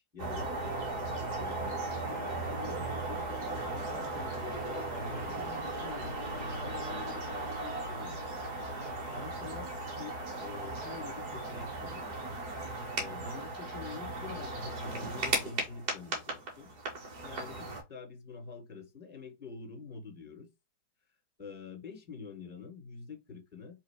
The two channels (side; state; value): left; late; 4.7 ms